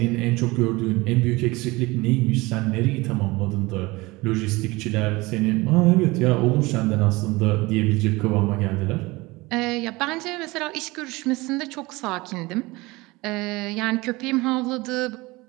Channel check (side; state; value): left; quieter; 22.2 dB